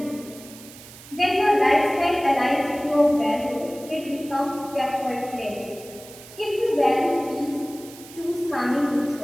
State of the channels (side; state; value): right; noise; hiss, 18 dB below the sound